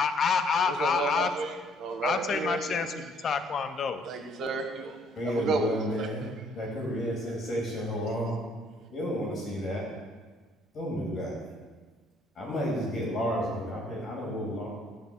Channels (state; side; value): normal; both; correlation 0.64